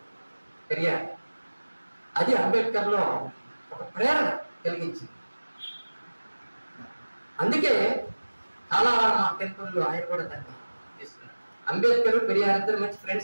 పెరియార్. అది అంబేద్కర్ లో ఒక ప్రేరణ కలిగించింది. అందుకే కాలారామ టెంపుల్లో ఆయన కూడా దాన్ని చేస్తున్నారు. అంబేద్కర్, పెరియార్ ఇద్దరు మంచి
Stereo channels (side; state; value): both; inverted; correlation -1.00